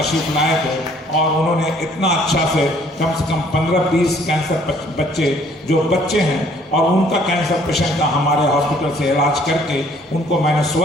लाए थे, और उन्होंने इतना अच्छा से कम 15-20 कैंसर बच्चे जो बच्चे हैं और उनका कैंसर पेशेंट का हमारे हॉस्पिटल से इलाज करके उनको मैंने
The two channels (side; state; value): both; normal; correlation 0.60